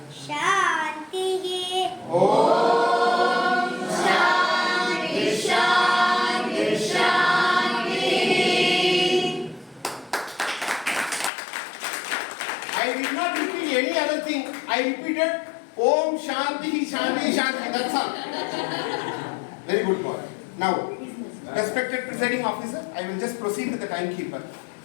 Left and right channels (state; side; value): drops out; right; at 11.3 s